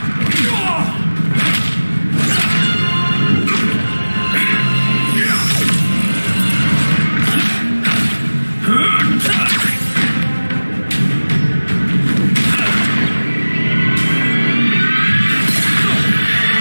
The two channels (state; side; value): inverted; both; correlation -1.00